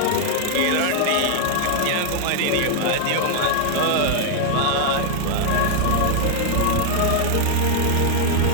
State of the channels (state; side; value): different; both; correlation 0.00